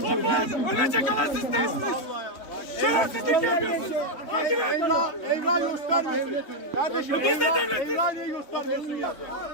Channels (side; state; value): right; late; 3.5 ms